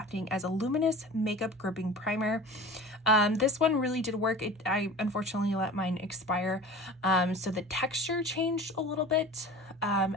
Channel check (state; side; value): normal; both; correlation 0.38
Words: as a luminous makeup gripping primer. This one really did work. I unfortunately let mine expire, so the texture changed a little bit,